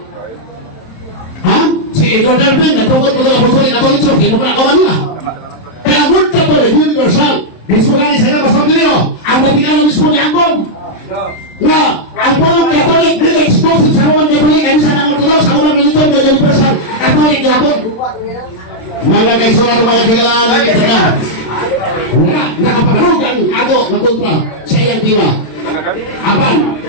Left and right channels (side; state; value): right; late; 26 ms